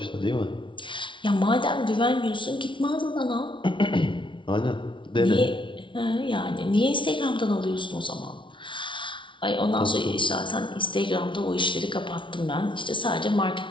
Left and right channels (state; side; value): late; right; 0.24 ms